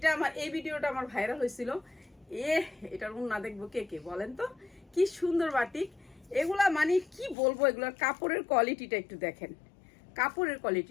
আমার, এই ভিডিওটা আমার ভাইরাল হয়েছিল। এটার উন্না দেখবো কে কে বলেন তো? কি সুন্দর বাটিক এগুলা, মানে কি বলবো, এগুলোর কাপড়ের কোয়ালিটিটা একটু দেখেন। কাপড়ের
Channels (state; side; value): drops out; right; at 7.4 s